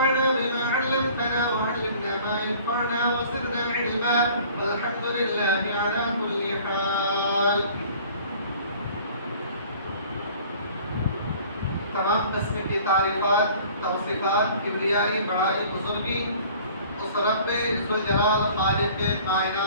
بما علمتنا وعلمنا ما ينفعنا وزدنا علما والحمد لله على كل حال. تمام قسم کی تعریفات توصیفات کبریائی بڑائی بزرگی اس رب ذوالجلال خالق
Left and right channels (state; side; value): inverted; both; correlation -0.50